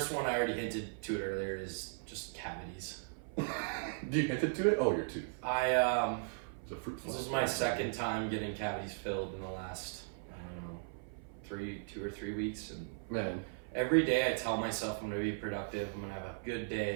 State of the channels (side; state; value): left; silent; 53 dB below the other